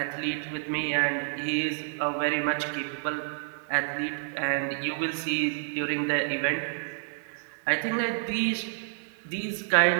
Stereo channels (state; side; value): silent; left; digital silence